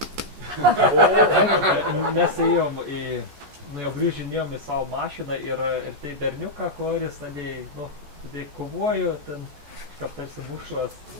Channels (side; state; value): left; late; 14 ms